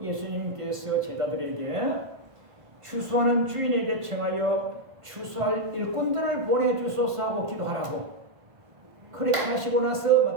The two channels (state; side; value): late; left; 1.5 ms